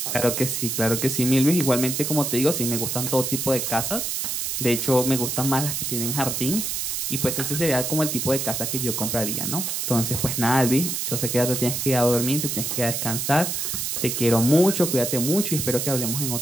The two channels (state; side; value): noise; right; hiss, 2 dB below the sound